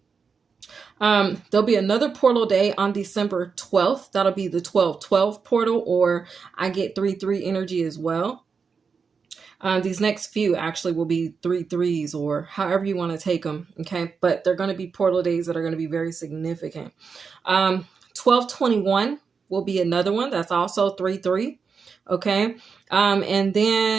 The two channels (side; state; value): left; quieter; 5.5 dB